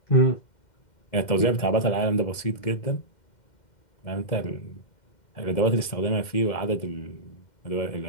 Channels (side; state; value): right; late; 2.1 ms